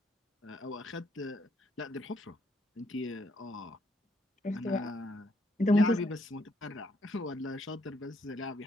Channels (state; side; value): normal; both; correlation 0.72